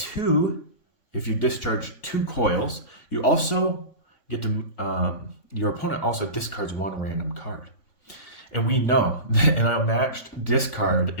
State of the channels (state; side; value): late; right; 3.5 ms